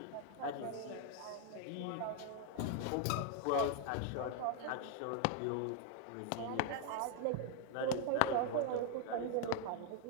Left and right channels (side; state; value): both; different; correlation 0.00